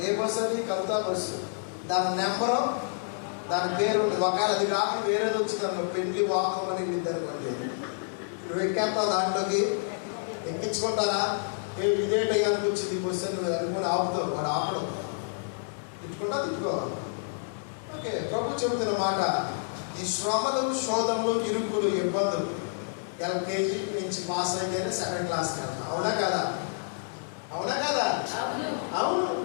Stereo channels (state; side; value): silent; right; 59 dB below the other